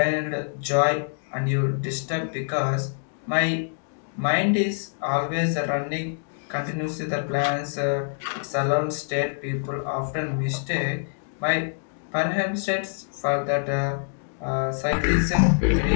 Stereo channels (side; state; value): right; silent; digital silence